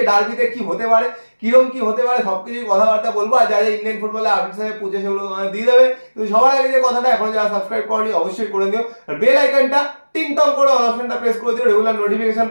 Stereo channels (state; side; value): inverted; both; correlation -1.00